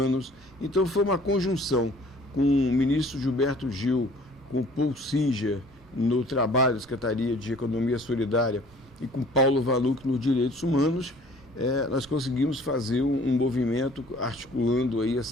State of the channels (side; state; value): both; normal; correlation 0.52